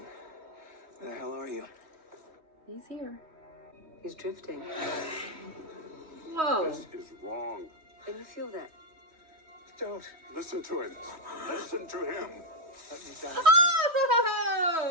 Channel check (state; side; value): late; left; 3.1 ms